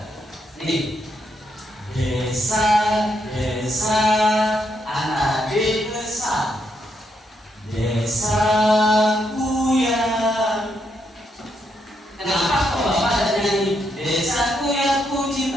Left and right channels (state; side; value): normal; both; correlation 0.78